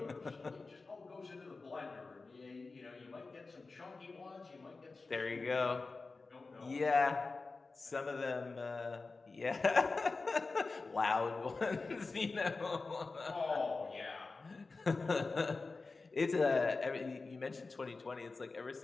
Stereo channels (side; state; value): right; quieter; 3.9 dB